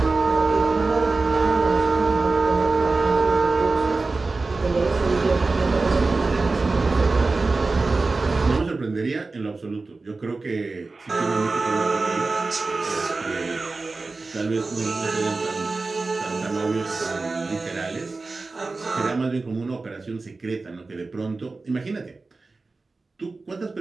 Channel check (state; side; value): quieter; left; 3.7 dB